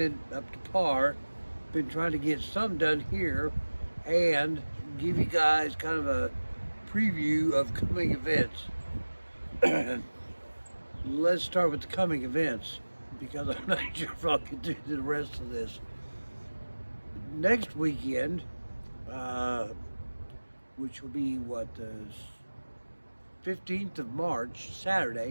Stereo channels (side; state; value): both; inverted; correlation -1.00